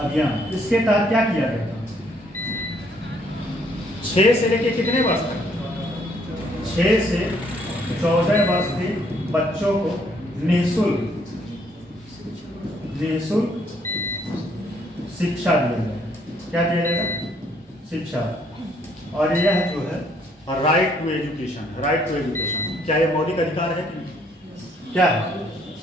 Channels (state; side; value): normal; both; correlation 0.67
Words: इसके तहत क्या किया गया था? 6 से लेके कितने वर्ष तक? 6 से 14 वर्ष के बच्चों को निःशुल्क शिक्षा दिया जाएगा। क्या दिया जाएगा? शिक्षा। और यह जो है right to education, right to education क्या ये मौलिक अधिकार है कि नहीं? क्या है?